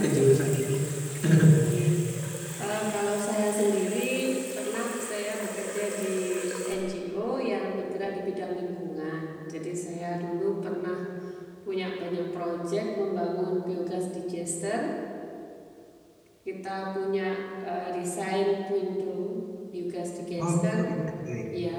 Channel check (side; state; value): both; identical; correlation 1.00